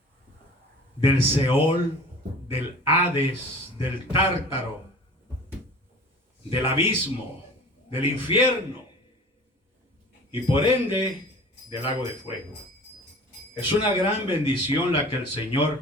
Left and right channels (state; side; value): normal; both; correlation 0.42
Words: del Seol, del Hades, del Tártaro, del abismo, del infierno y por ende del lago de fuego. Es una gran bendición la que el